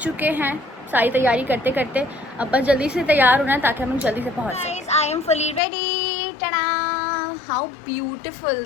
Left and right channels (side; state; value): right; drops out; at 5.6 s